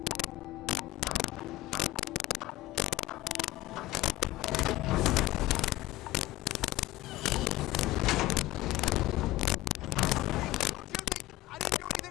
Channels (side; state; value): right; quieter; 17.6 dB